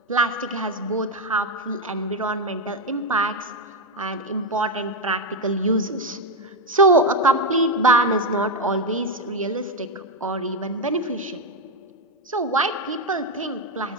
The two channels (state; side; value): normal; both; correlation 0.06